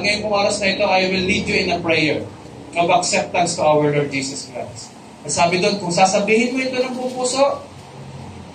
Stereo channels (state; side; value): identical; both; correlation 1.00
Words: ngayong oras na ito, I will lead you in a prayer of acceptance to our Lord Jesus Christ. At sabi doon, kung sasabihin mo ito ng pupuso,